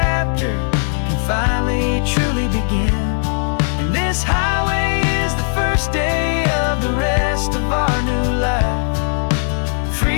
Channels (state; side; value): silent; right; digital silence